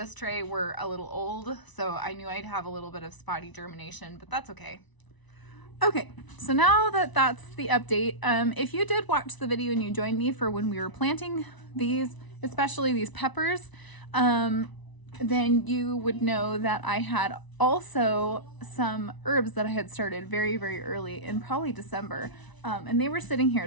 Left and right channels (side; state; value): right; late; 1.0 ms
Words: tray were a little old, so I knew I'd have a little bit of spotty germination, but that's okay. Okay, so now that that's the update, if you did watch the video and you joined me for when we were planting these, especially these peppers, then you would know that I had also some herbs that I had started very, very early in probably December, and they were sitting here.